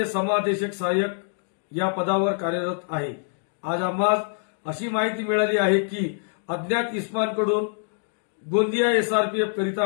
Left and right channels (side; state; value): right; silent; 62 dB below the other